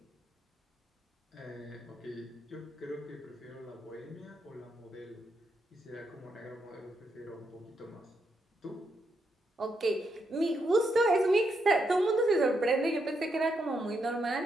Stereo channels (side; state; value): both; normal; correlation 0.80